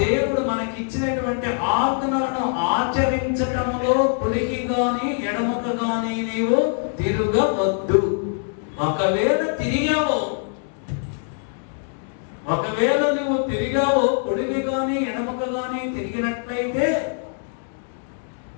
దేవుడు మనకి ఇచ్చినటువంటి ఆజ్ఞలను ఆచరించటములో కుడికి గాని ఎడమకు గాని నీవు తిరగవద్దు. ఒకవేళ నువ్వు తిరిగావో కుడికి గాని ఎడమకు గాని తిరిగినట్లయితే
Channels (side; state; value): right; silent; 61 dB below the other